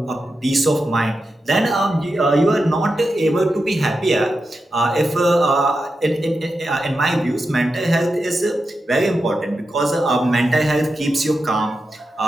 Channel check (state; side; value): normal; both; correlation 0.89